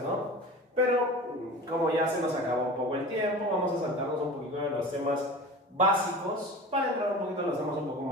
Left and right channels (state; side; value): normal; both; correlation 0.35